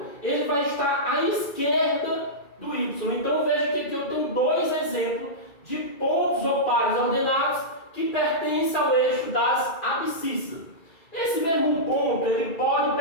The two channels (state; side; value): late; right; 2.3 ms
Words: ele vai estar à esquerda do Y. Então veja que aqui eu tenho dois exemplos de pontos ou pares ordenados que pertencem ao eixo das abscissas. Esse mesmo ponto ele pode